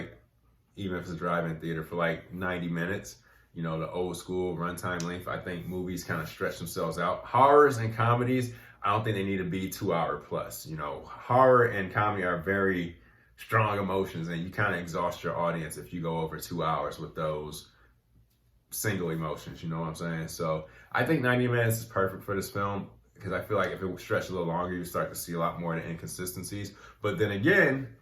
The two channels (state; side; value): identical; both; correlation 1.00